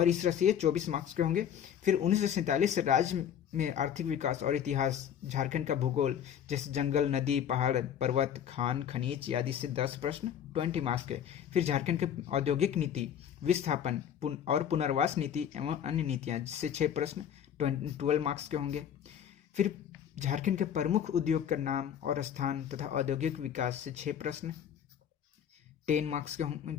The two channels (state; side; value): quieter; right; 9.1 dB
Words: इस तरह से ये 24 मार्क्स के होंगे। फिर 1947 से राज्य में आर्थिक विकास और इतिहास, झारखंड का भूगोल, जैसे जंगल, नदी, पहाड़, पर्वत, खान, खनिज आदि से 10 प्रश्न 20 मार्क्स के। फिर झारखंड के औद्योगिक नीति, विस्थापन और पुनर्वास नीति एवं अन्य नीतियां, जिससे 6 प्रश्न 12 मार्क्स के होंगे। फिर झारखंड के प्रमुख उद्योग का नाम और स्थान तथा औद्योगिक विकास से 6 प्रश्न 10 मार्क्स के होंगे।